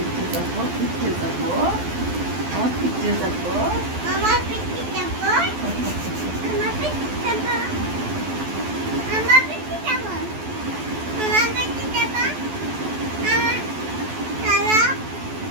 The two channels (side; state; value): left; late; 12 ms